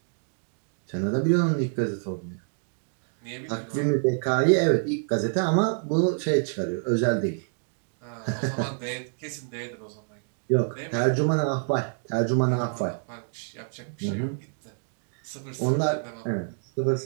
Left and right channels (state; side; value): silent; left; 60 dB below the other